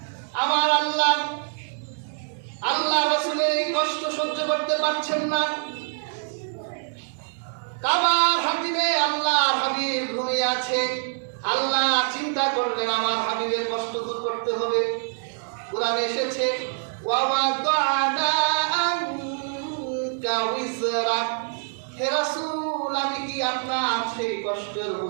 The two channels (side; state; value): left; silent; digital silence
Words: আমার আল্লাহ রাসূলের এই কষ্ট সহ্য করতে পারছেন না। কাবার হাতিমে আল্লাহর হাবিব ঘুমিয়ে আছে। আল্লাহ চিন্তা করলেন আমার হাবিবের কষ্ট দূর করতে হবে। কোরআনে এসেছে, ওয়াওয়াদানা আনকা উযরাক, হে রাসূল, আমি কি আপনার সেই কষ্টের